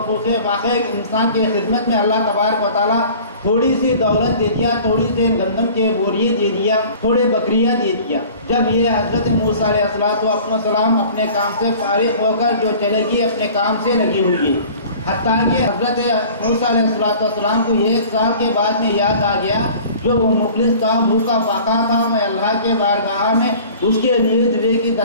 فوقے فاقے انسان کی خدمت میں اللہ تبارک و تعالیٰ تھوڑی سی دولت دے دیا، تھوڑی سی گندم کے بوریے دے دیا، تھوڑے بکریاں دے دیا، جب یہ حضرت موسیٰ علیہ السلام اپنے کام سے فارغ ہو کر جو چلے گی اپنے کام سے لگی ہوئی، حتیٰ کہ حضرت موسیٰ علیہ السلام کو 1 سال کے بعد میں یاد آ گیا، جو وہ مفلس تھا، بھوکا فاقہ تھا، میں اللہ کے بارگاہ میں اس کے لیے دعے کی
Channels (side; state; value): both; inverted; correlation -0.45